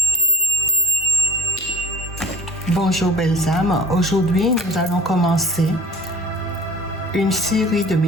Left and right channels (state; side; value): normal; both; correlation 0.45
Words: Bonjour belles âmes, aujourd'hui nous allons commencer une série de